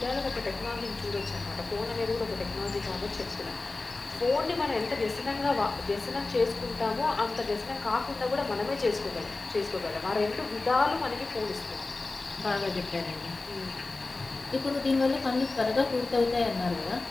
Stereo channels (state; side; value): quieter; right; 3.4 dB